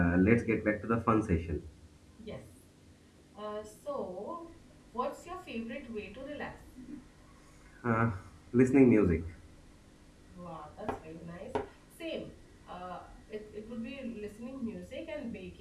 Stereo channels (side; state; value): both; identical; correlation 1.00